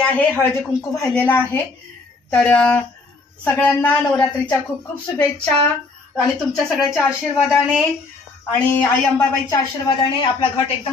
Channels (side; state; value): right; quieter; 3.8 dB